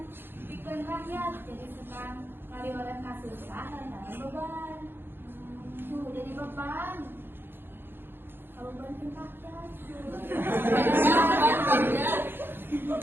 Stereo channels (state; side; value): late; left; 0.10 ms